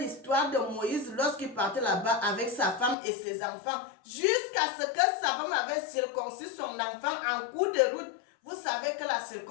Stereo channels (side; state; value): right; drops out; at 3.0 s